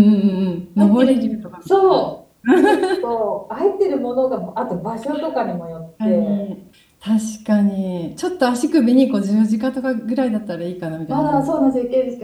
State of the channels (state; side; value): identical; both; correlation 1.00